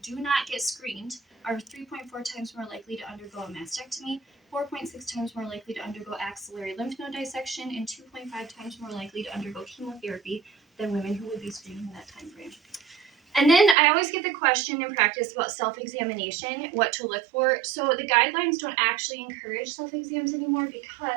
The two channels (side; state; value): left; drops out; at 13.8 s